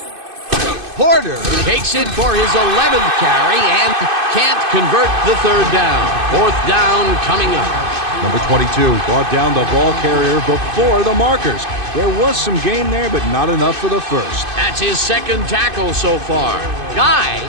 Porter takes it for his 11th carry and can't convert the third down. Fourth down coming up. Number 22 brought down the ball carrier before the markers. There was some gain there, but not enough for the first. That's his second tackle so far. Guy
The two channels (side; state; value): left; late; 2.5 ms